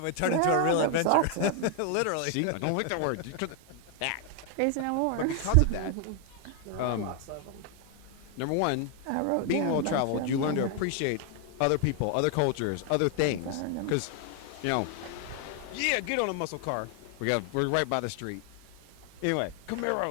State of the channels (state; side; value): different; both; correlation 0.00